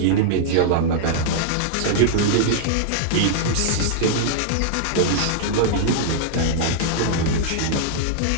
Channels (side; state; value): both; different; correlation -0.01